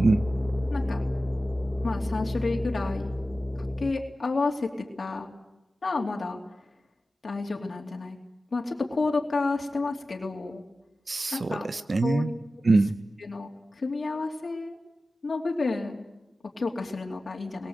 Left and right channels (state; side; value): normal; both; correlation 0.94